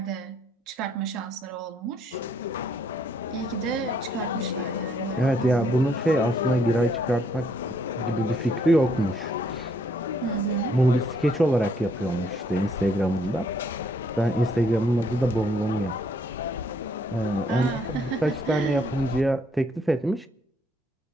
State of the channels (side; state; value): both; normal; correlation 0.69